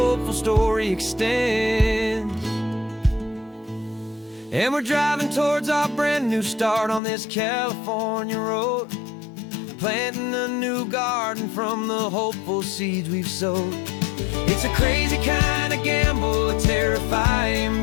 story extends. And we're driving towards our brand new start on this California road, planting a new garden from the hopeful seeds we've sowed. It's a crazy kind of gamble, a terrifying,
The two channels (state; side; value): drops out; right; at 7.0 s